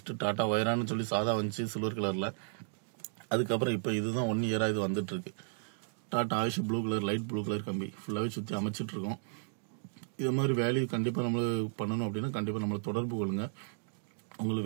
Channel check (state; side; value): silent; left; digital silence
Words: டாடா வைரான்னு சொல்லி சாதா வந்துச்சு சில்வர் கலர்ல. அதுக்கப்புறம் இப்ப இதுதான் 1 இயரா இது வந்துட்டு இருக்கு. Tata AYUSH blue colour, light blue colour கம்பி ஃபுல்லாவே சுத்தி அமைச்சிட்டு இருக்கோம். இது மாதிரி வேலையை கண்டிப்பா நம்ம பண்ணணும் அப்படின்னா கண்டிப்பா நம்மளை தொடர்பு கொள்ளுங்க.